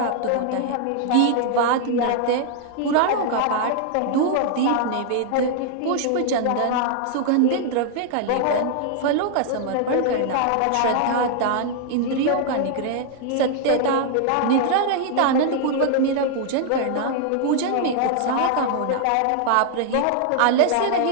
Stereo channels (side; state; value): both; different; correlation 0.00